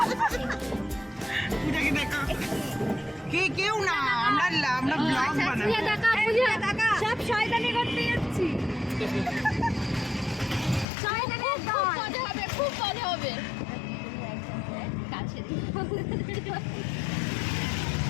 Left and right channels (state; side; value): drops out; right; at 10.9 s